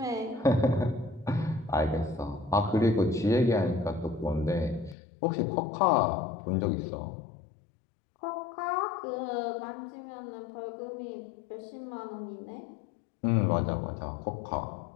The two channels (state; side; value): drops out; right; at 5.0 s